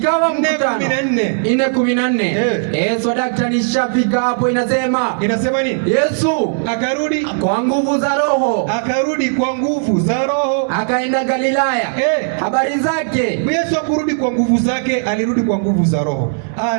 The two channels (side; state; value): left; silent; digital silence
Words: mkutano 4:14. Yesu daktari shafika hapo. Inasema nini? Yesu akarudi kwa nguvu za Roho. Akaenda Galilaya. Habari zake. Yesu akurudi kwa nguvu zake, alirudi kwa nguvu za Roho.